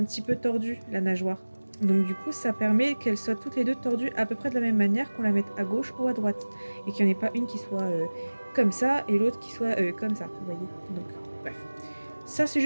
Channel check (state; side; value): inverted; both; correlation -1.00